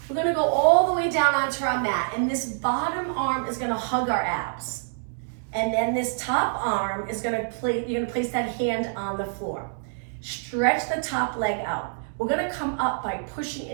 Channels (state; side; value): silent; left; digital silence